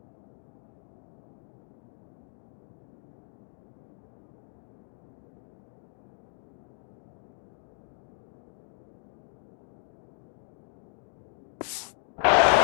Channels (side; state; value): right; silent; digital silence